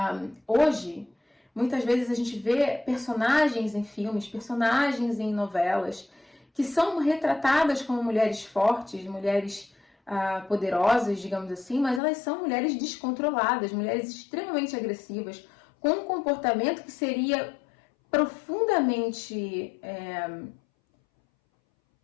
hoje, muitas vezes a gente vê personagens em filmes, personagens em novelas, que são retratadas como mulheres fortes, mulheres poderosas, digamos assim, mas elas são mulheres descontroladas, mulheres extremamente agressivas, com um comportamento que seria profundamente,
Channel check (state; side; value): drops out; right; at 12.0 s